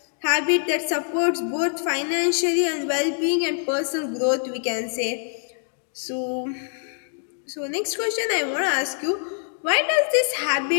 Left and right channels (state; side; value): silent; right; digital silence